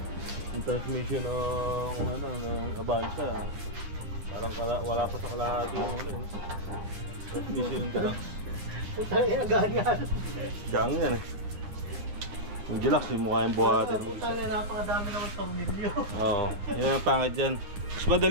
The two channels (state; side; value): late; left; 10 ms